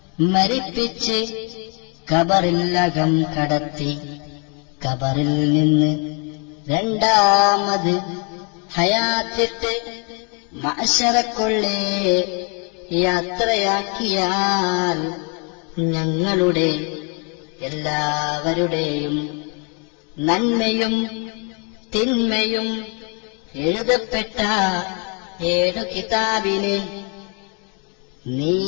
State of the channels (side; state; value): right; quieter; 36.1 dB